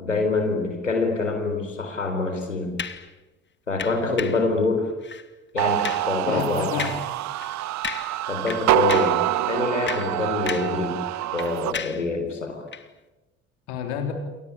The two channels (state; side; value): normal; both; correlation 0.28